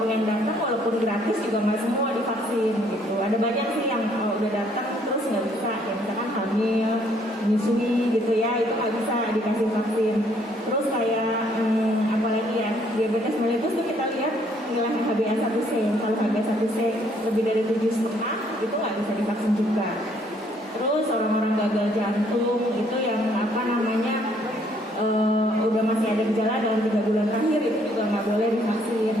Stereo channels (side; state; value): both; normal; correlation 0.65